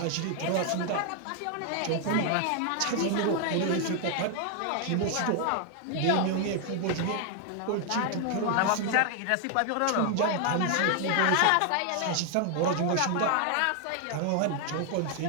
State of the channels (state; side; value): different; both; correlation 0.00